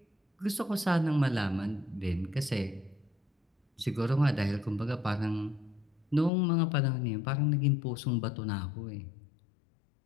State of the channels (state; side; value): drops out; right; at 6.3 s